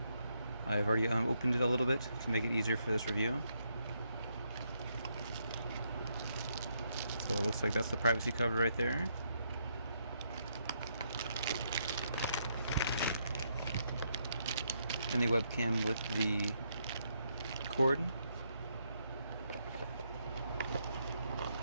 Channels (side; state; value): both; inverted; correlation -0.77